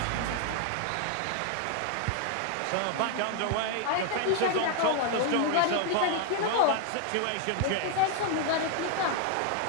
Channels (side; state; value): both; different; correlation 0.00